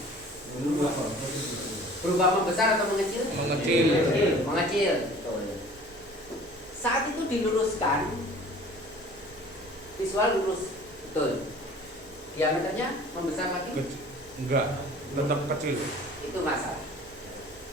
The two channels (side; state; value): both; normal; correlation 0.47